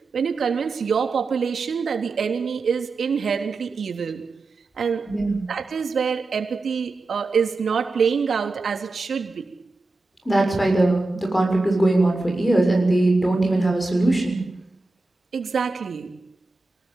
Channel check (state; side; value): quieter; left; 3.3 dB